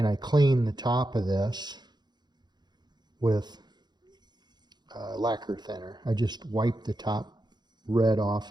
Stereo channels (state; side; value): late; left; 0.21 ms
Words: I cleaned the top of this with lacquer thinner. I just wiped the top red